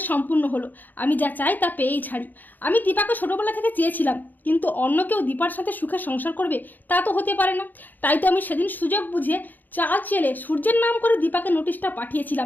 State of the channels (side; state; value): right; late; 0.086 ms